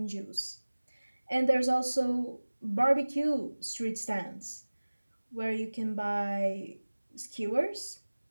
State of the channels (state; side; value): inverted; both; correlation -1.00